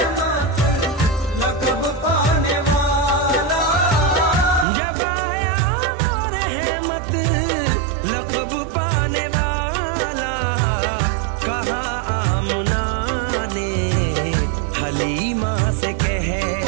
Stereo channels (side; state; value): left; drops out; at 4.7 s